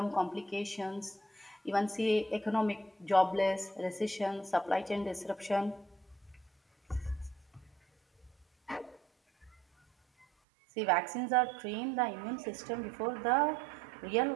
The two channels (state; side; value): drops out; left; at 10.2 s